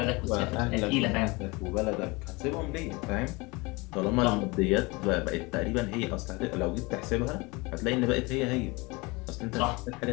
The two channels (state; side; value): quieter; right; 25.3 dB